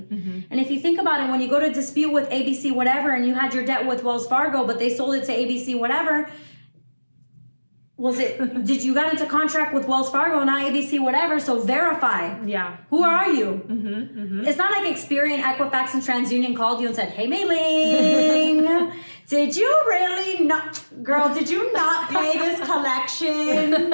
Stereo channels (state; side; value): inverted; both; correlation -1.00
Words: And if you think about it, when you go to dispute with ABC whatever and you had your debt with Wells Fargo, but they sold it to ABC whatever, did you got into contract with Wells Fargo, not ABC whatever, so verify. Yeah. Who are you? It's not like Experian, Equifax, and TransUnion called you and said, hey, Mei-Ling, did you really not, girl, did you not pay this collection?